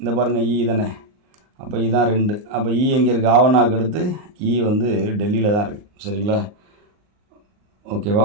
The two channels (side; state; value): left; late; 39 ms